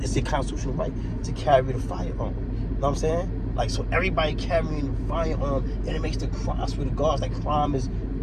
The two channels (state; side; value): identical; both; correlation 1.00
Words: your constitutional right to carry the firearm. You know what I'm saying? Like, so everybody carrying the firearm, and it makes the crime, I swear to God, like, crime is